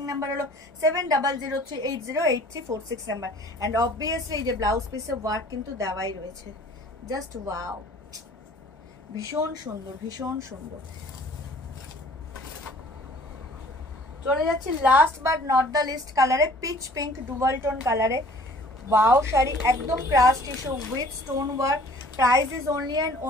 নাম্বার হলো 7003808346 নাম্বার। অ্যান্ড অবভিয়াসলি এই যে ব্লাউজ পিসে ওয়ার্ক কিন্তু দেওয়াই রয়েছে, জাস্ট ওয়াও, ভীষণ সুন্দর, ভীষণ সুন্দর। চলে যাচ্ছি last but not the least কালারে, পিচ পিঙ্ক ডুয়াল টোন কালারে। ওয়াও শাড়ি, একদম crush tissue with stone work. Price is only and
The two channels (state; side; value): normal; both; correlation 0.52